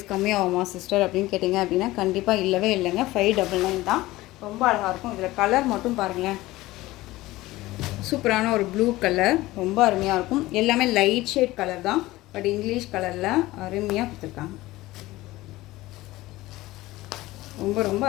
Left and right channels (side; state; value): right; quieter; 18.2 dB